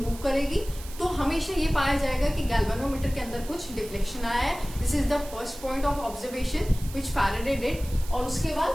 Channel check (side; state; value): right; noise; hiss, 16 dB below the sound